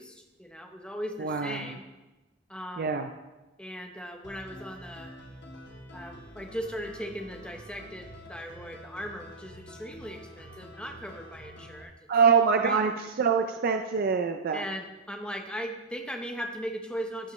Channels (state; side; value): quieter; left; 4.5 dB